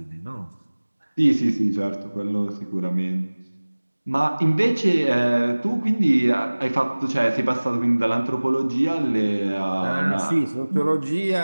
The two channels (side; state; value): both; inverted; correlation -1.00